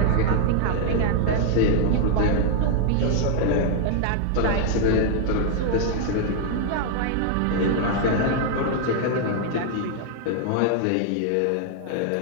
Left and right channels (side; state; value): both; different; correlation -0.01